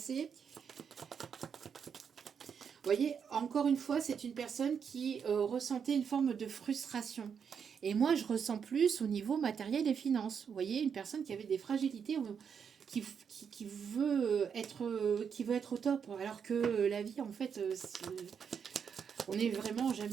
Vous voyez, encore une fois, c'est une personne qui ressentait une forme de frustration. Et moi, je ressens plus au niveau matériel et finance. Vous voyez, une personne qui avait des fragilités, qui veut être au top. Alors que la vie, en fait, on n'est vraiment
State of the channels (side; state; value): left; quieter; 7.0 dB